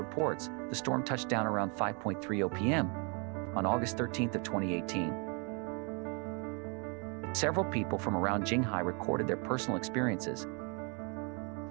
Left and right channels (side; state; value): left; quieter; 34.7 dB